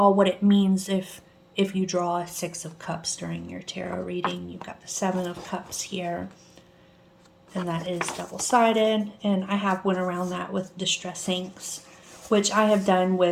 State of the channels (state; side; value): identical; both; correlation 1.00